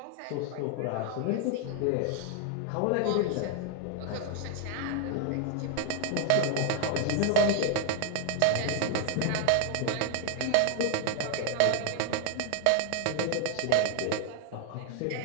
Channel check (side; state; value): both; different; correlation 0.00